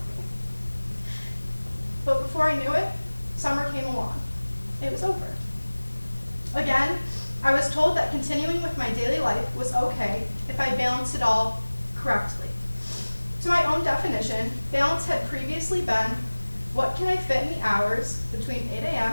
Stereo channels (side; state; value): both; inverted; correlation -1.00